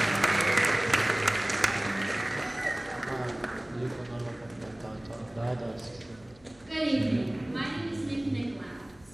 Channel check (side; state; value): left; noise; hum, 27 dB below the sound